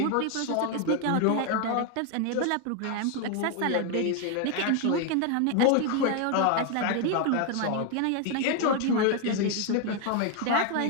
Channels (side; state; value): both; different; correlation 0.01